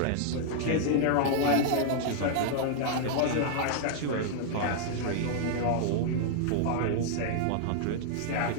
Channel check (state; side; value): different; both; correlation -0.01